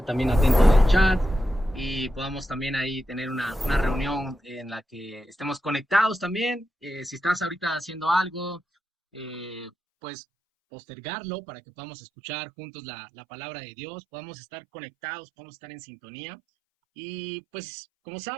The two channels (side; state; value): left; drops out; at 9.7 s